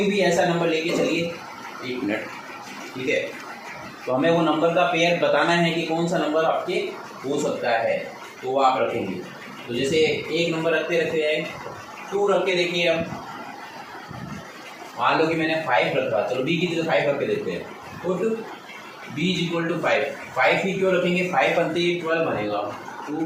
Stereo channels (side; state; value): both; identical; correlation 1.00